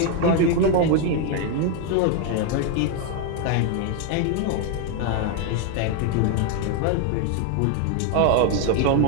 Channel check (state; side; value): different; both; correlation 0.01